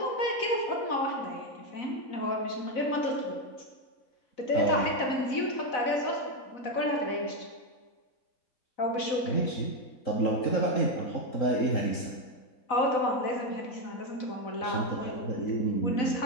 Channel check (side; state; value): right; late; 4.0 ms